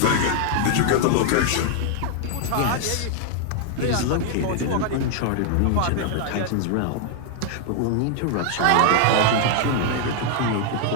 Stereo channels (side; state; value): both; different; correlation 0.00